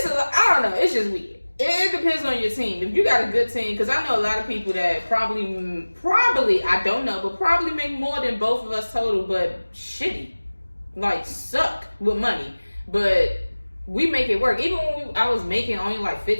don't know, it's just weird. It depends on your team. If you got a good team, because I know a lot of people that probably I don't know, but probably make more than both of us total, but shitty, like suck with money. But we make it work. Even when I was making only like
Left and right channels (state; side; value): inverted; both; correlation -1.00